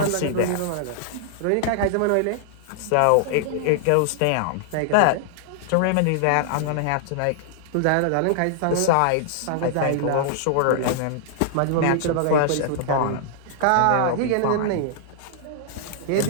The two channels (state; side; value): different; both; correlation -0.01